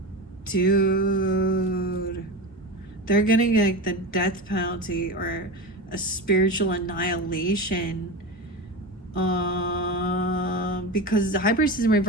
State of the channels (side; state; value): both; normal; correlation 0.23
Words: Dude. They're getting like the death penalty or a spiritual annihilation. Because the high priestess in